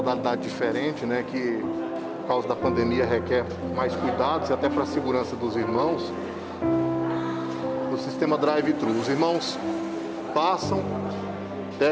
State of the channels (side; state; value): both; identical; correlation 1.00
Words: diferente, né? Que por causa da pandemia requer mais cuidados e até para a segurança dos irmãos. No sistema drive-thru, os irmãos passam,